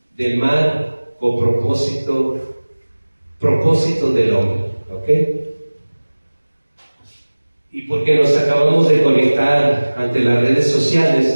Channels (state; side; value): inverted; both; correlation -1.00